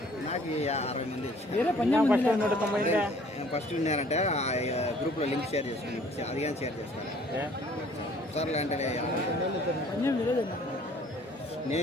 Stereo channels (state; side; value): normal; both; correlation 0.56